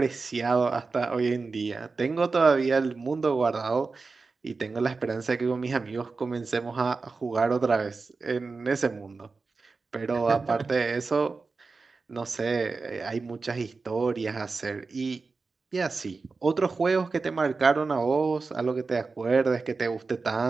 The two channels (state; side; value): quieter; left; 4.2 dB